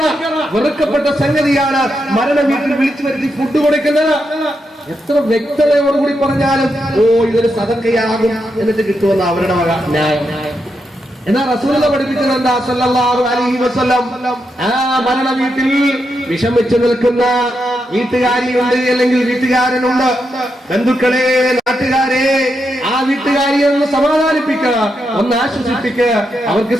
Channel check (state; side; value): normal; both; correlation 0.84